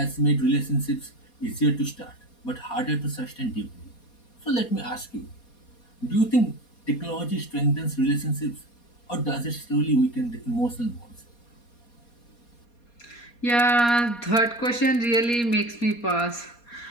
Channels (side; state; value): right; late; 4.2 ms